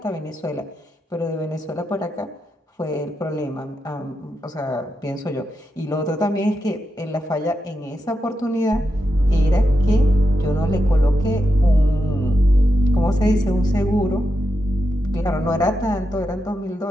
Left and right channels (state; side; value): normal; both; correlation 0.87